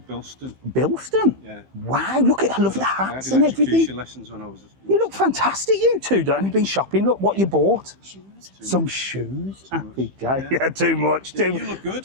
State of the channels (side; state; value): left; late; 15 ms